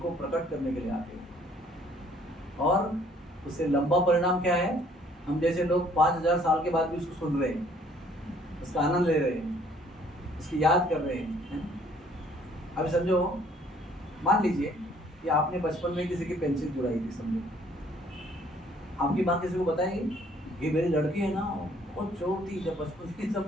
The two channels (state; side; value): normal; both; correlation 0.60